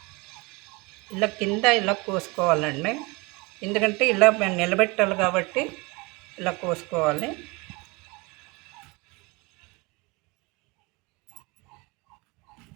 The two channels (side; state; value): left; quieter; 26.2 dB